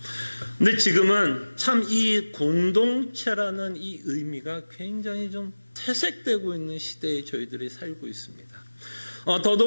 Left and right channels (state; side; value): inverted; both; correlation -1.00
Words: 근데 지금은 참 이 공동체라는 이 의미가 굉장히 좀 퇴색되고 있는 시대에 저희들이 살고 있습니다.